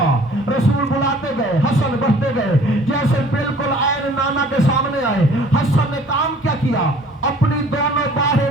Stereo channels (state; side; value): normal; both; correlation 0.52